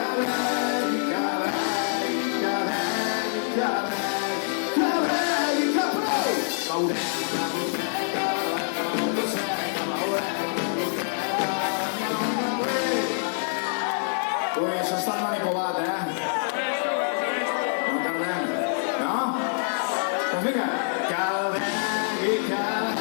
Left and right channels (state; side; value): silent; right; 61 dB below the other